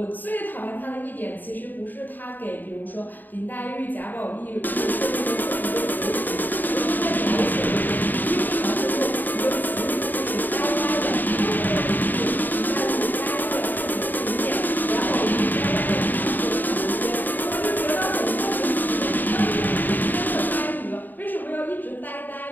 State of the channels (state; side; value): late; right; 0.089 ms